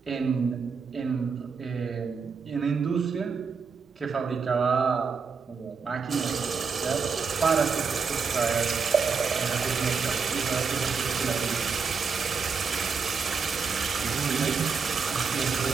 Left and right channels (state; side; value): quieter; left; 5.5 dB